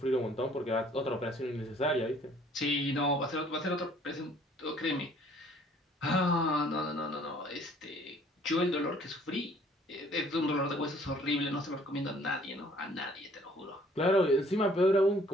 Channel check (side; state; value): both; normal; correlation 0.58